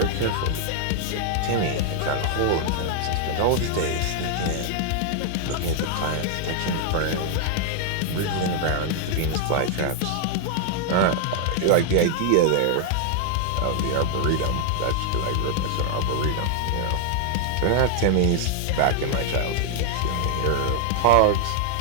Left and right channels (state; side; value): different; both; correlation 0.00